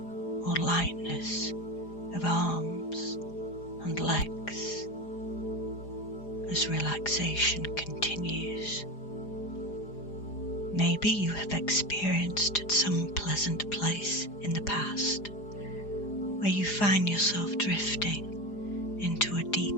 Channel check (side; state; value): right; late; 4.9 ms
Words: or lightness of arms and legs as relaxation continues. Maybe you have experienced at some pleasant place in the past where you find yourself drifting into a